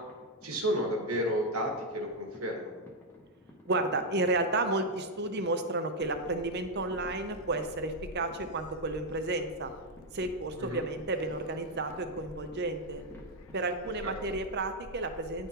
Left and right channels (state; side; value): normal; both; correlation 0.01